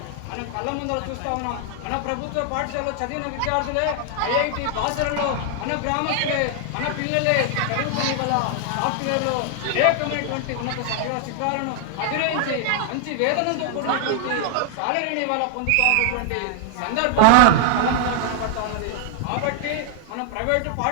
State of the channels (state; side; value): different; both; correlation 0.00